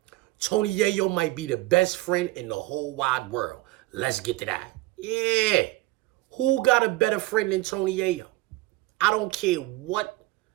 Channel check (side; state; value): left; quieter; 19.5 dB